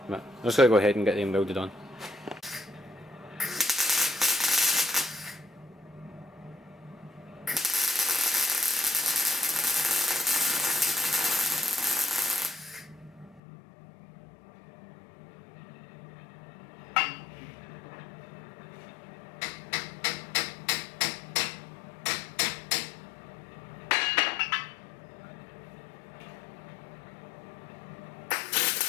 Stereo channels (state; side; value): drops out; right; at 13.4 s